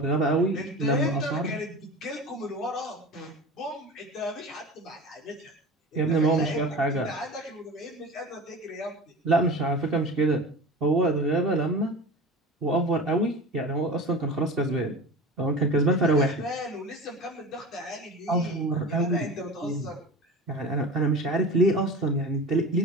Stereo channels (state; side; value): normal; both; correlation 0.33